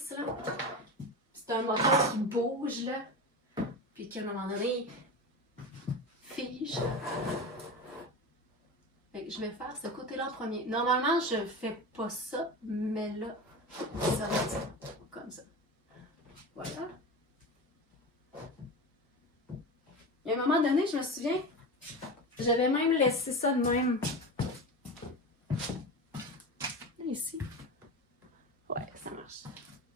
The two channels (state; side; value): normal; both; correlation 0.26